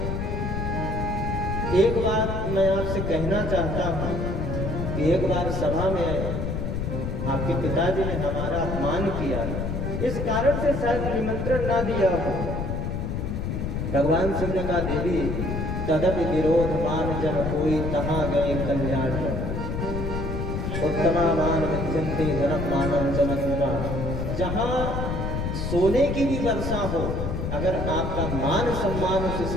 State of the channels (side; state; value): left; noise; rumble, 2 dB below the sound